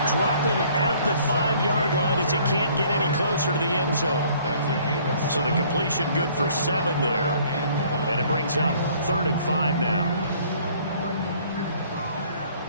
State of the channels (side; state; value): both; inverted; correlation -0.58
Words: drop him at the 5-yard line as he can't get any closer to the end zone. So the completion good for 7 there. And it brings up 3rd and 5 now.